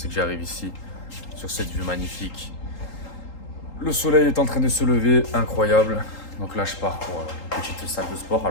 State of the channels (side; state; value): right; late; 3.8 ms